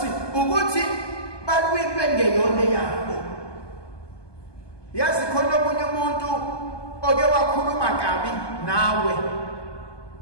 ukuthi balwimbe ngeyona yabo. Yazi khona omunye umuntu oke wakhuluma kabi nawe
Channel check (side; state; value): right; late; 1.2 ms